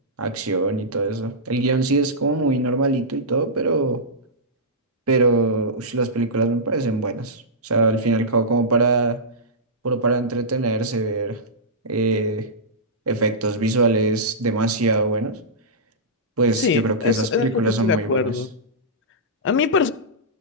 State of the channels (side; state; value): both; normal; correlation -0.14